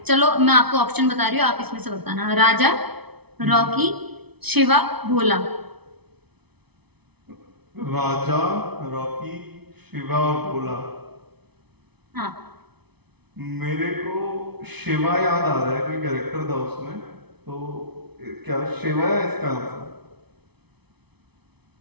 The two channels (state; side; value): late; left; 0.99 ms